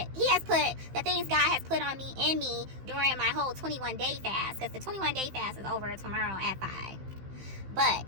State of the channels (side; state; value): left; late; 15 ms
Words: he has put the things God has put on me in me during my whole 21-day fast, because the 21-day fast is over tomorrow at 5. But